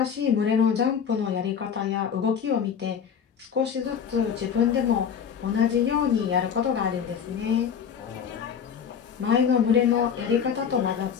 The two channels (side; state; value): right; quieter; 7.5 dB